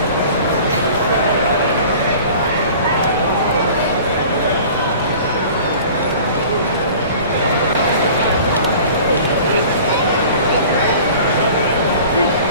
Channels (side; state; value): both; inverted; correlation -0.44